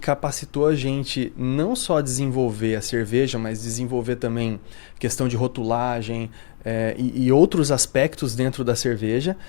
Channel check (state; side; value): silent; right; digital silence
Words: a gente não só desenvolver a cerveja, mas desenvolver também questão de rotulagem e outros aspectos dentro da cerveja